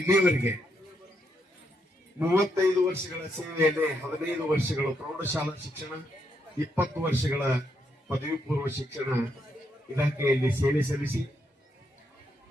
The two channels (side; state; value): both; normal; correlation 0.78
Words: 35 ವರ್ಷಗಳ ಸೇವೆಯಲ್ಲಿ 15 ವರ್ಷಗಳ ಪ್ರೌಢಶಾಲಾ ಶಿಕ್ಷಣ, 20 ವರ್ಷಗಳ ಪದವಿ ಪೂರ್ವ ಶಿಕ್ಷಣ ಇಲಾಖೆಯಲ್ಲಿ ಸೇವೆ ಸಲ್ಲಿಸಿ